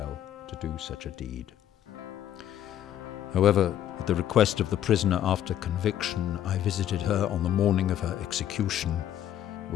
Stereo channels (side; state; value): right; quieter; 11.1 dB